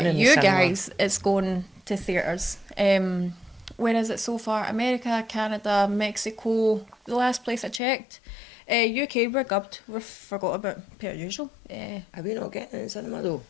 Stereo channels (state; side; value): drops out; right; at 7.8 s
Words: in the you cinema. guys, it's going to theatres. Where is it so far? America, Canada, Mexico. The last place I checked. UK, we're gubbed. We forgot about per usual. Are we not getting it in the cinema though?